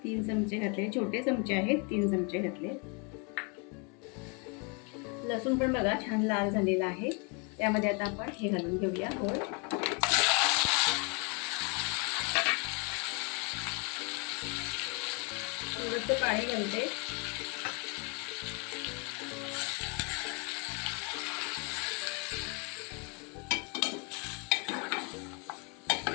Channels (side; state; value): right; quieter; 33.0 dB